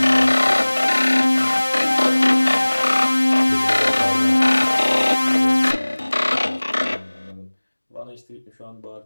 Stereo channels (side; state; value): both; inverted; correlation -1.00